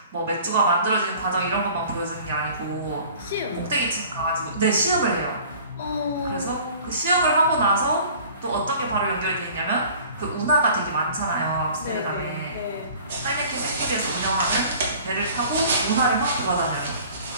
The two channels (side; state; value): both; inverted; correlation -0.47